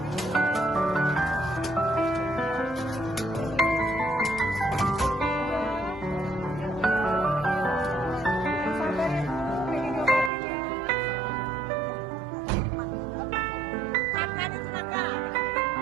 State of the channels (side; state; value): left; drops out; at 10.3 s